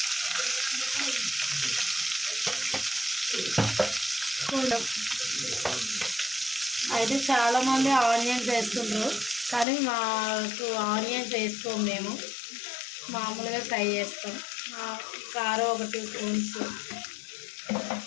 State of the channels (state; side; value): drops out; right; at 9.7 s